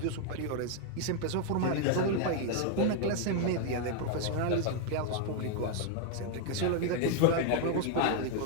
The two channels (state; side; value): different; both; correlation 0.00